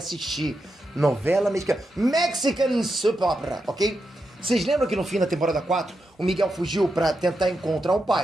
Novela mexicana. Mexican Soap Opera, ok? Vocês lembram que no fim da temporada 4, o Miguel fugiu pra tentar encontrar o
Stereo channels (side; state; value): both; normal; correlation 0.86